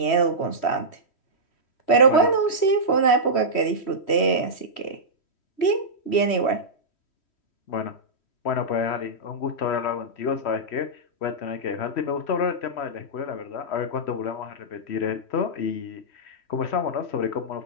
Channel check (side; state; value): right; late; 3.1 ms